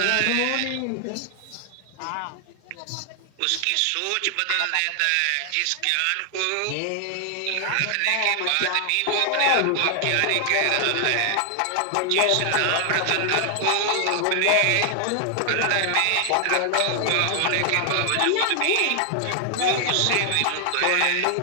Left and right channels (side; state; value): both; different; correlation 0.00